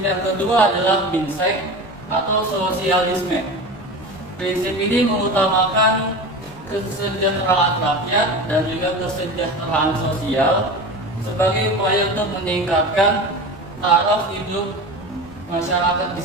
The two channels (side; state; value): both; normal; correlation 0.30